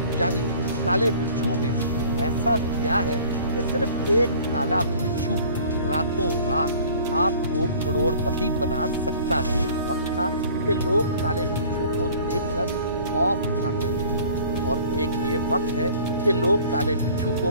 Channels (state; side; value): inverted; both; correlation -0.49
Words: यानी काले बिच्छू में ऐसा क्या है कि सिर्फ एक काला बिच्छू रातों रात आपको करोड़पति बना सकता है। वक्त था कि लोग काले बिच्छू को देखकर खौफ खाते थे और एक ये वक्त है कि लोग काले बिच्छू